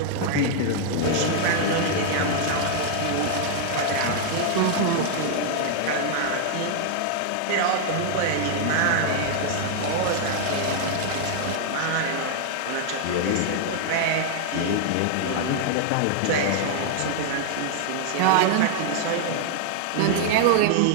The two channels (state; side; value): different; both; correlation 0.00